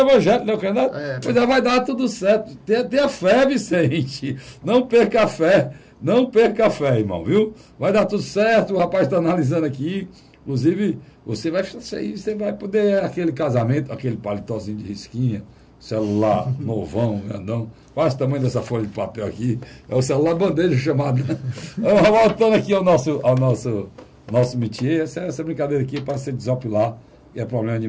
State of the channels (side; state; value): both; identical; correlation 1.00